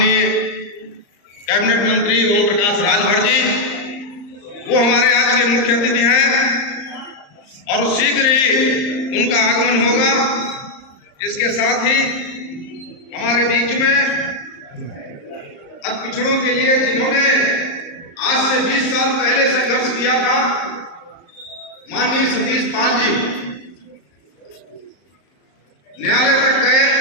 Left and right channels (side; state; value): right; late; 35 ms